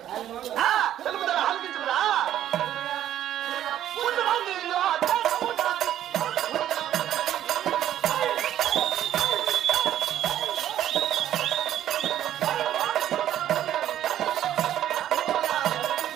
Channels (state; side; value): quieter; left; 11.6 dB